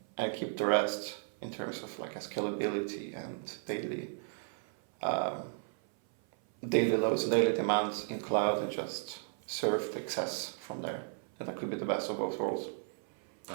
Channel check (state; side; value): silent; left; 55 dB below the other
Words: and keep the rest in terms of like a scalability and daily loads and daily demands in cloud and just serve the excess from there. And that could be the best of both worlds.